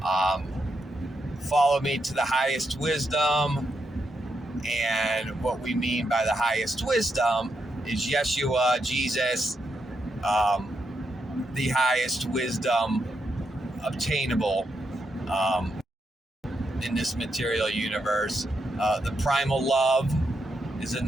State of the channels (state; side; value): normal; both; correlation 0.82